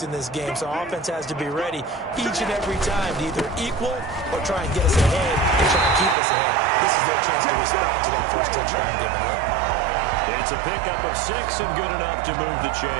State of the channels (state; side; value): drops out; left; at 6.2 s